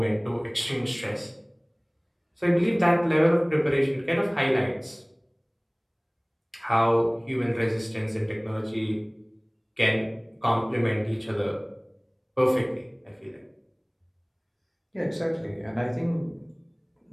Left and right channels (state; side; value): identical; both; correlation 1.00